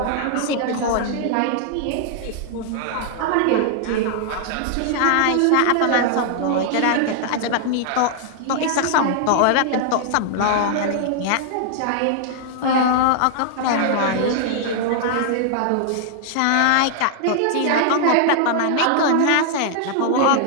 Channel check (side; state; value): both; different; correlation -0.01